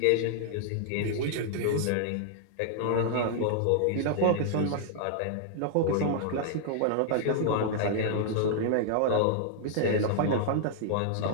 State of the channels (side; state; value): both; different; correlation -0.01